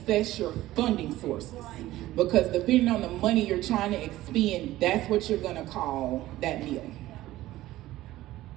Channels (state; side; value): quieter; left; 15.9 dB